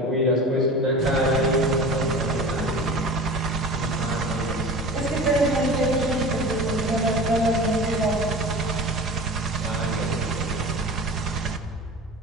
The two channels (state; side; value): normal; both; correlation 0.35